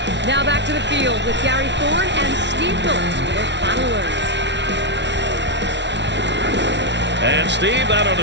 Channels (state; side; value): late; left; 0.51 ms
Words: Now back to the field with Gary Thorne and Steve Phillips for their final words. And, Steve, that ought